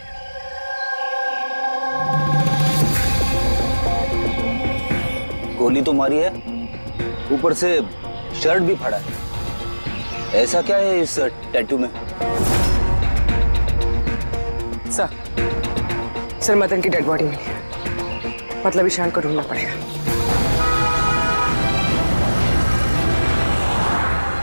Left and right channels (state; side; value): inverted; both; correlation -1.00